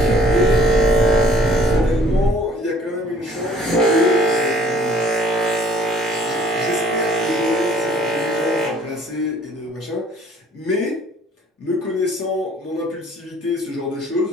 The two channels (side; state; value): both; normal; correlation 0.56